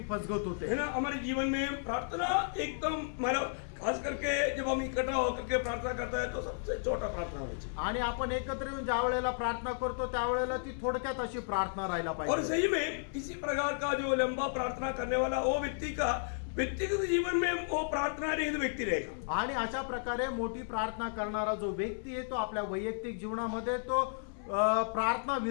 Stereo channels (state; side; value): silent; right; 55 dB below the other